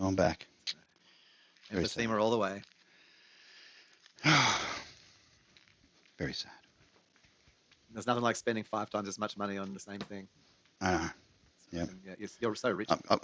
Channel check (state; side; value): identical; both; correlation 1.00